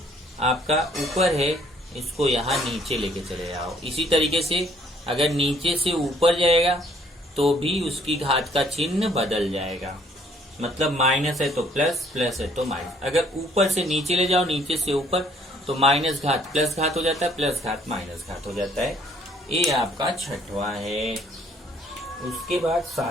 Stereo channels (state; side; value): normal; both; correlation 0.62